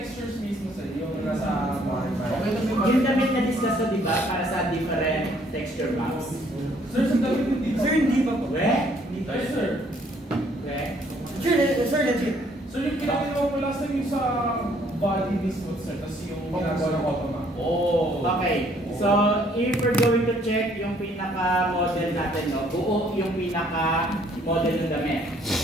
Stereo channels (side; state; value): both; normal; correlation 0.63